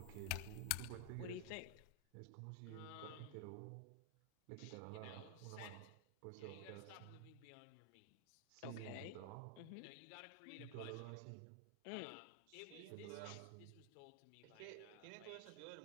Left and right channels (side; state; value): both; different; correlation 0.00